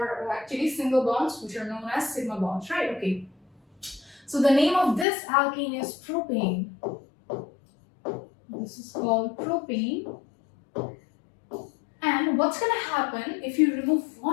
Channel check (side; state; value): right; drops out; at 5.1 s